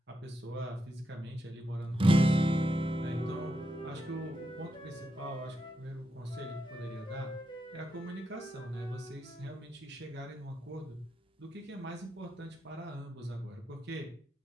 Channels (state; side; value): normal; both; correlation 0.85